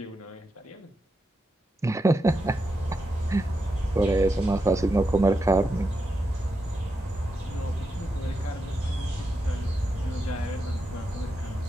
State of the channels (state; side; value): normal; both; correlation 0.86